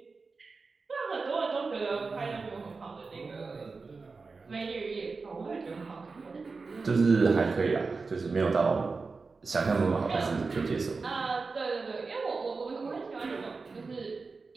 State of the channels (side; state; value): left; quieter; 4.3 dB